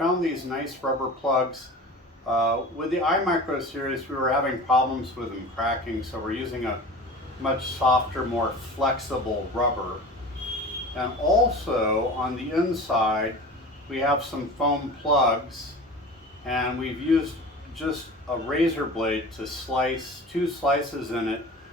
these nice rubber plugs. With the iMicro series, we were having problems with them cracking, so we're using a much softer, more flexible rubber. And also on the inside, we have some foam plugs, and we've used just a razor blade to slice two slices in it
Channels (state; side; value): normal; both; correlation 0.36